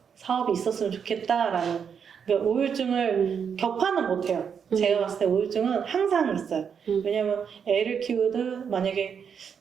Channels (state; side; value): quieter; left; 7.0 dB